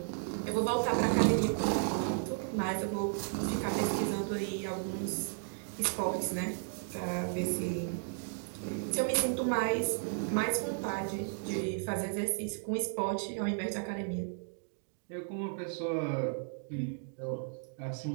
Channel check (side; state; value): left; silent; digital silence